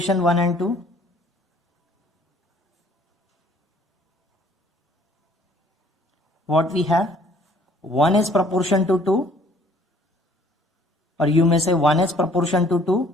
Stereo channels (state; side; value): normal; both; correlation 0.57